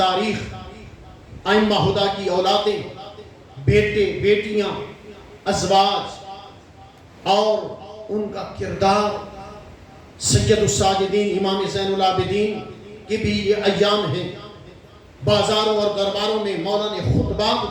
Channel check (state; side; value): identical; both; correlation 1.00